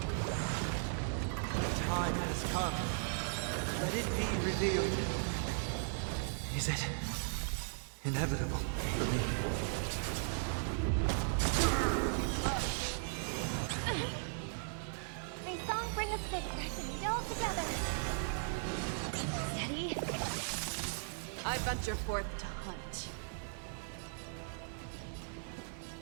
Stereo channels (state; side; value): silent; left; 53 dB below the other